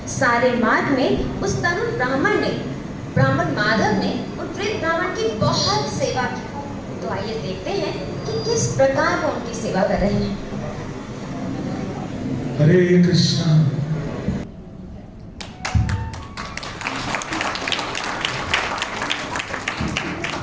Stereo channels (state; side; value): identical; both; correlation 1.00